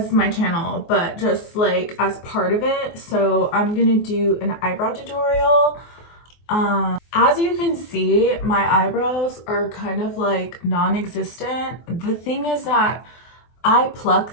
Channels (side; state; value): right; late; 24 ms